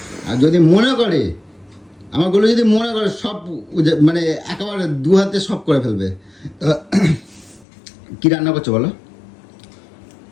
আর যদি মনে করে, আমার গোলু যদি মনে করে সব মানে একেবারে দু হাতে সব করে ফেলবে। তো কি রান্না করছো বলো?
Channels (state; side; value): drops out; right; at 7.7 s